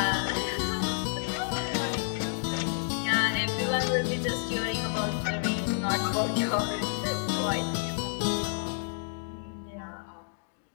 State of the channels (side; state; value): right; silent; digital silence